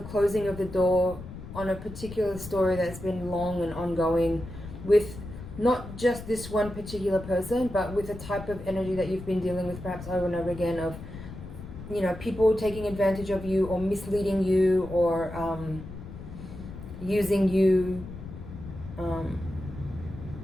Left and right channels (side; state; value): left; noise; rumble, 12 dB below the sound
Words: closing of the door on a particular story that's been long and ongoing, with not just this one particular person, but with a type of energy that you've been dealing with perhaps over and over again of, people taking advantage of you or misleading you or using you.